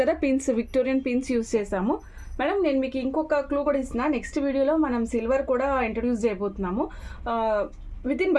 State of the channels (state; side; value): identical; both; correlation 1.00